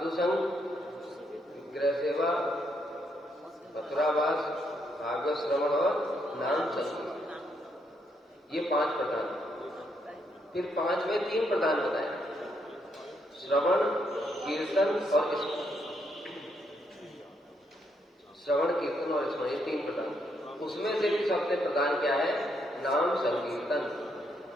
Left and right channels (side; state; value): both; normal; correlation 0.76